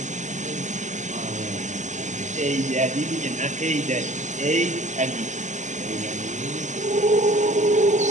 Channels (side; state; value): left; late; 0.35 ms